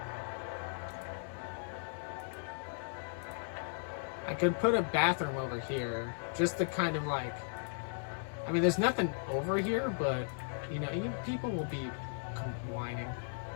I could put a bathroom over here, just to kind of like, I mean, there's nothing over here, but, you know, people will be whining.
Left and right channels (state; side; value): silent; right; 54 dB below the other